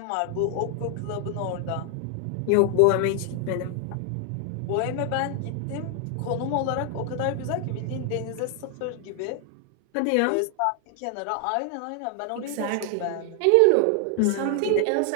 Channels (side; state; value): both; different; correlation 0.00